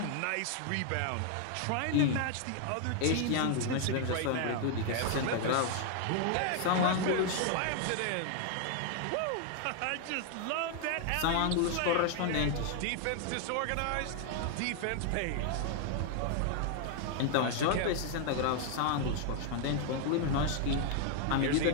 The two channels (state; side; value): different; both; correlation 0.00